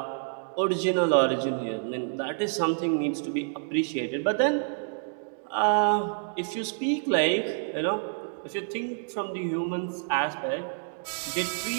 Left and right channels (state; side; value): silent; left; digital silence